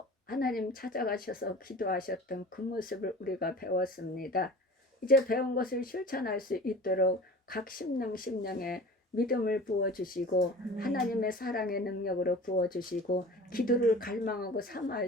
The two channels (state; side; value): normal; both; correlation 0.40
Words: 하나님 찾아가셔서 기도하셨던 그 모습을 우리가 배웠습니다. 이제 배운 것을 실천할 수 있도록 각 심령에 믿음을 부어주시고 하나님의 사랑의 능력으로 부어주시고 기도를 갈망하고